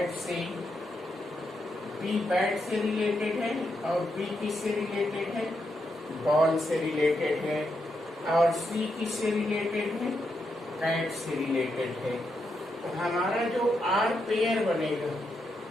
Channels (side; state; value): both; normal; correlation 0.82